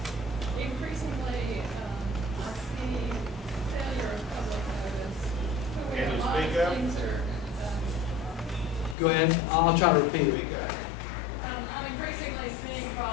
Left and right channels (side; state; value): right; drops out; at 9.0 s